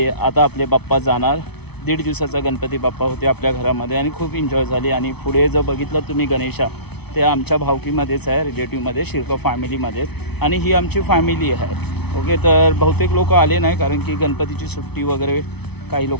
आता आपले बाप्पा जाणार. 1.5 दिवसाचा गणपती बाप्पा होते आपल्या घरामध्ये आणि खूप एन्जॉय झाली. आणि पुढे जर बघितलं तुम्ही गणेशा, ते आमच्या भावकीमध्येच आहे, रिलेटिव्हमध्ये, शिरका फॅमिलीमध्येच. आणि ही आमची फॅमिली आहे. ओके, तर बहुतेक लोक आले नाही कारण की गणपतीची सुट्टी वगैरे, काही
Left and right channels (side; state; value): right; late; 0.98 ms